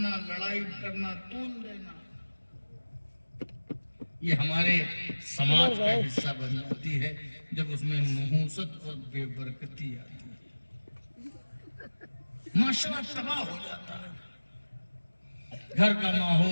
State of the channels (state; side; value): inverted; both; correlation -1.00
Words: لڑائی کرنا, طول دینا, یہ ہمارے سماج کا حصہ بن جاتی ہے جب اس میں نحوست اور بے برکتی آتی ہے. معاشرہ تباہ ہو جاتا ہے. گھر کا